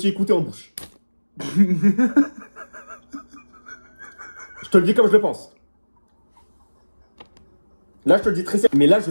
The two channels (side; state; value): both; inverted; correlation -1.00